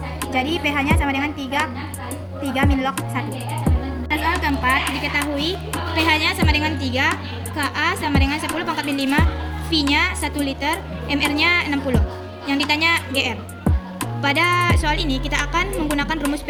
Jadi pH-nya sama dengan 3 min log 1. Soal keempat, diketahui pH-nya sama dengan 3, Ka sama dengan 10 pangkat min 5, V V-nya 1 liter, MR-nya 60. Yang ditanya GR. Pada soal ini kita akan menggunakan rumus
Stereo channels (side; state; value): both; identical; correlation 1.00